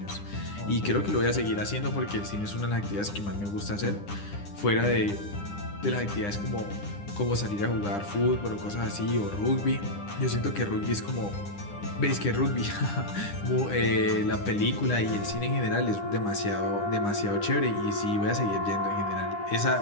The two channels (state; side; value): late; right; 9.9 ms